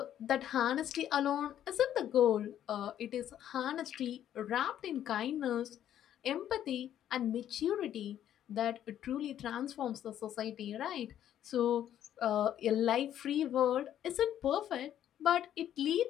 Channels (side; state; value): right; quieter; 10.9 dB